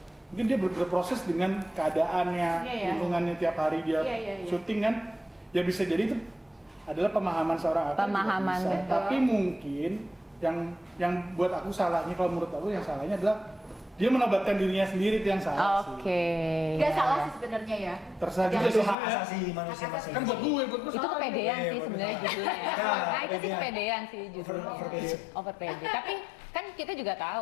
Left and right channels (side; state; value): right; drops out; at 18.9 s